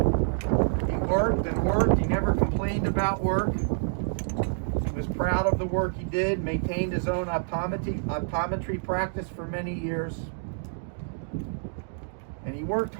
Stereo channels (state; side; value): silent; left; digital silence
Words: worked and worked. He never complained about work. He was proud of the work he did, maintained his own optometry practice for many years. And he worked